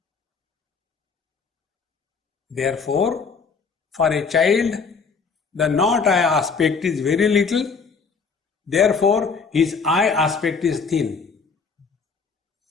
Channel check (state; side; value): quieter; right; 5.2 dB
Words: Therefore, for a child, the not I aspect is very little. Therefore, his I aspect is thin.